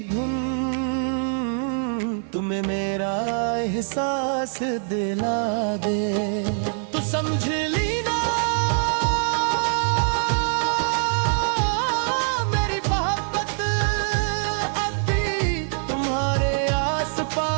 धुन तुम्हें मेरा एहसास दिला दे, तो समझ लेना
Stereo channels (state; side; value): silent; left; 61 dB below the other